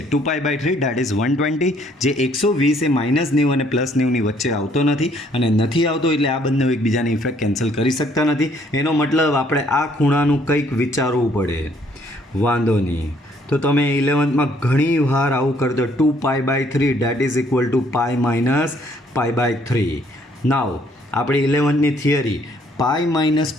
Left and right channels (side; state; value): both; normal; correlation 0.65